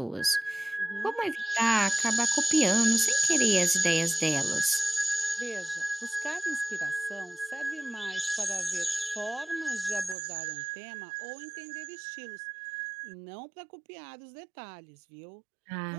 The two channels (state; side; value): drops out; left; at 10.2 s